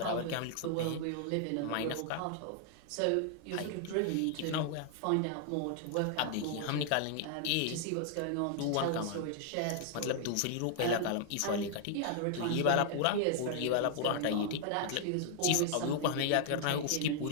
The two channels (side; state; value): both; different; correlation 0.00